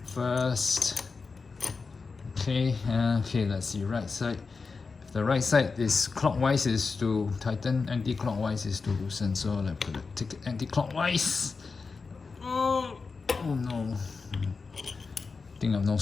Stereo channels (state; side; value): quieter; right; 4.6 dB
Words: first. Okay, let's see, right side. If the right side is clockwise is to tighten, anti-clockwise is to loosen. So let's put it, take it anti-clockwise. Oh no. I think I have no